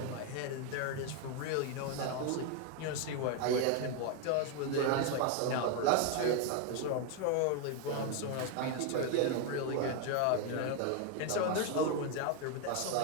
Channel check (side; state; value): both; different; correlation 0.01